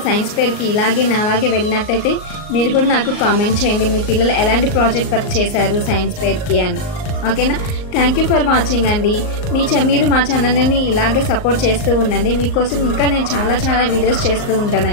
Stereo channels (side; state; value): right; late; 38 ms